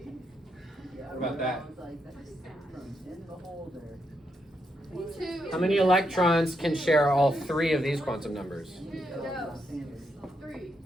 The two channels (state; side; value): normal; both; correlation 0.80